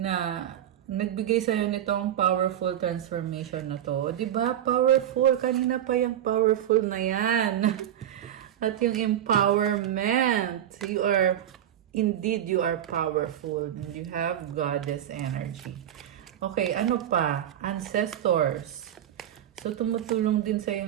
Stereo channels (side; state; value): left; quieter; 10.9 dB